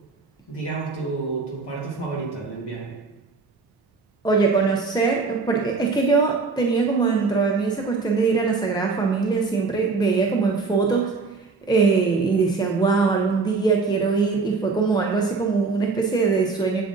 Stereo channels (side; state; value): left; quieter; 4.4 dB